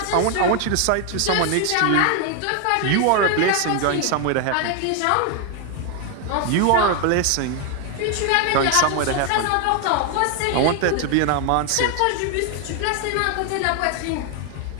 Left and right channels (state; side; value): different; both; correlation 0.00